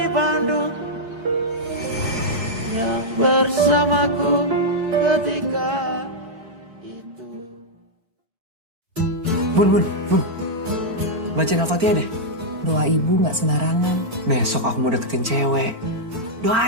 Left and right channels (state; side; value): late; left; 4.4 ms